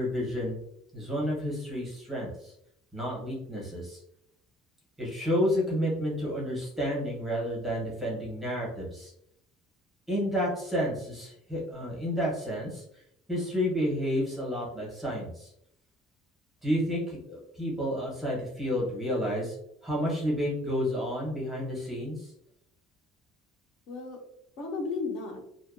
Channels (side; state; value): both; normal; correlation 0.56